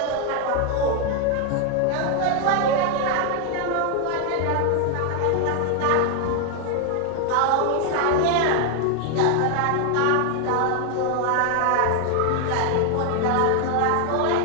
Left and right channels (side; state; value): both; different; correlation 0.00